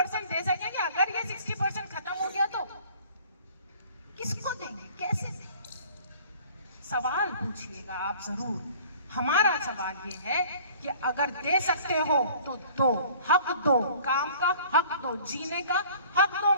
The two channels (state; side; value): inverted; both; correlation -0.50